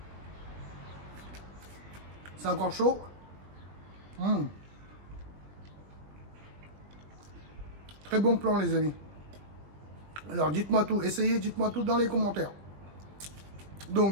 C'est encore chaud. Très bon plan, les amis. Alors, dites-moi tout. Essayez, dites-moi tout dans les commentaires.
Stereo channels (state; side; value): late; left; 20 ms